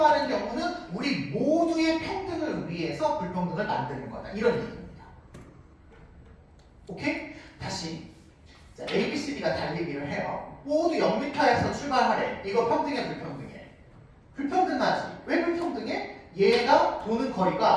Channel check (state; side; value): identical; both; correlation 1.00